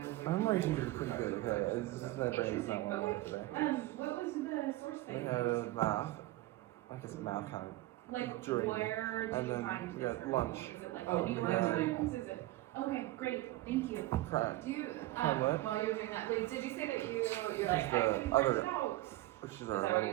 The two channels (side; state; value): left; quieter; 17.6 dB